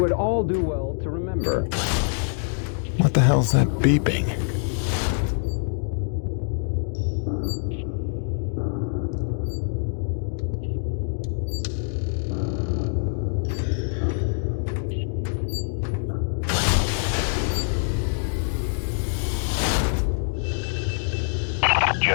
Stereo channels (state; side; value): silent; right; digital silence